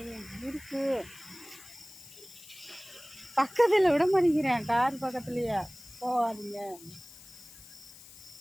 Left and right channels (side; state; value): left; noise; hiss, 19 dB below the sound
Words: இருக்கு பக்கத்தில் விட மாட்டேங்கிறேன். கார் பக்கத்துலையே போகாதீங்க.